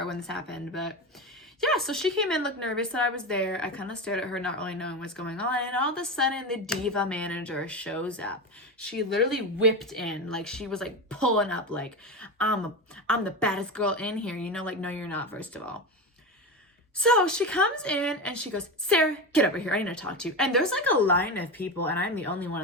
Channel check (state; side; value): normal; both; correlation 0.20